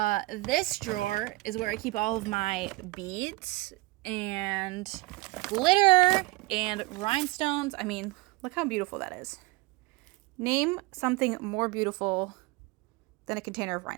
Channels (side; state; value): left; quieter; 22.8 dB